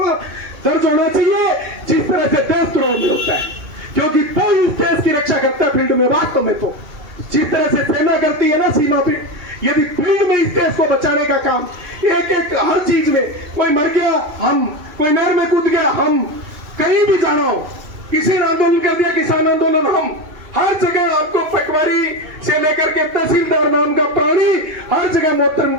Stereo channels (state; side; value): late; left; 2.7 ms